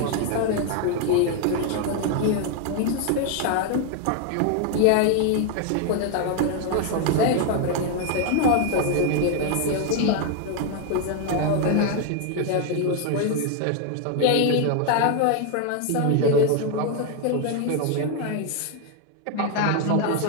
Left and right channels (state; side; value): different; both; correlation 0.01